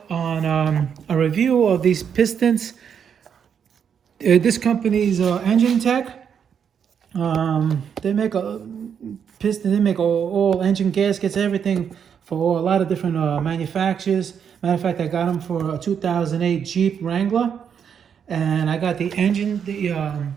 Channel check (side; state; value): left; quieter; 7.6 dB